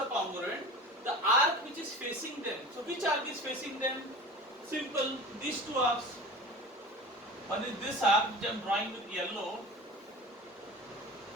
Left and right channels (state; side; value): normal; both; correlation 0.36